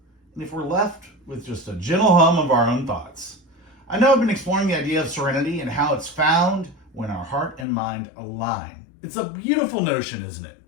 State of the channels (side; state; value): right; drops out; at 7.7 s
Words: and if we're left with just a gentle hum of our own thoughts. I know I've been exploring the idea of serenity and how it's found when our heart and mind align. It's a beautiful notion, isn't it?